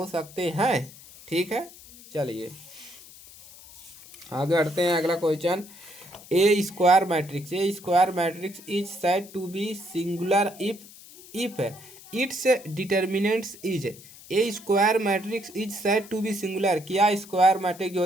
सकते हैं। ठीक है, चलिए आगे बढ़ते हैं। अगला question, a square matrix is said to be singular if its determinants is. A square matrix is said to be singular, क्या स्क्वायर मैट्रिक्स जो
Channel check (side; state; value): left; noise; hiss, 19 dB below the sound